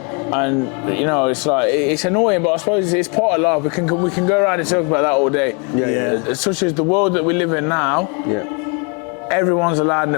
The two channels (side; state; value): right; quieter; 35.1 dB